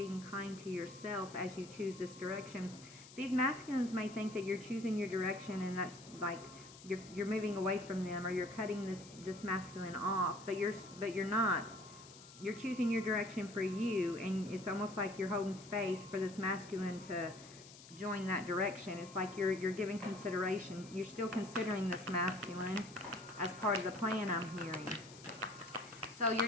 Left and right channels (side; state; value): left; noise; hiss, 18 dB below the sound